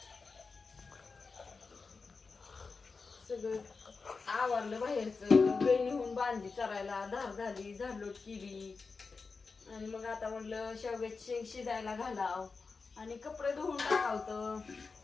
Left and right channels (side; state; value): right; quieter; 4.5 dB